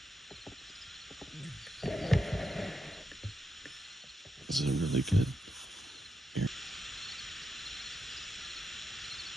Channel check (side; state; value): both; normal; correlation 0.85